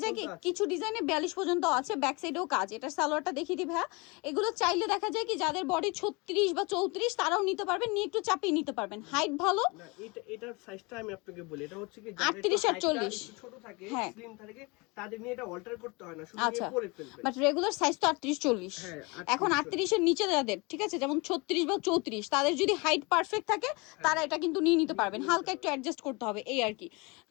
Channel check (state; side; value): quieter; right; 27.4 dB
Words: যায় কি কিছু ডিজাইনে 42 পর্যন্ত আছে, ব্যাক সাইডেও কাজ। এটার সালোয়ারটা দেখিয়ে দিই ভাই। এগুলো চাইলে দেখা যায় কি যাদের বডি 36 বা 34 তারাও নিতে পারবেন, নিয়ে একটু চাপিয়ে নিতে পারবেন। হাইট ভালো না, এটার সাইজটা আমি আপনাকে বলি, এটা হচ্ছে কি 38 আর 40 ছোট থাকে, হ্যাঁ স্লিম থাকে, তাদের নিয়ে এটা অল্টার করতে হয় না, শুধু আচ্ছা, নিয়ে পরে ফেলবে। বাট রেগুলার সাইজ তো 38 40। হ্যাঁ, এখন 38 এর নিচে যাদের, ঠিক আছে, যেমন 36 বা 34, তাদের যদি হাইট পারফেক্ট থাকে তারা এটা কিন্তু নিয়ে নিতে পারবেন, হালকা একটু অ্যাডজাস্ট করতে হবে এই আর কি।